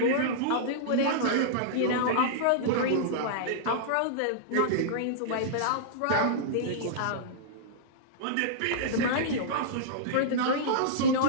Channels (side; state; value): both; different; correlation -0.02